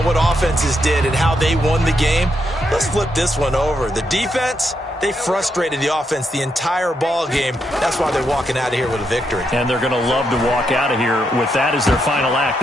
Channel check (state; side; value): normal; both; correlation 0.80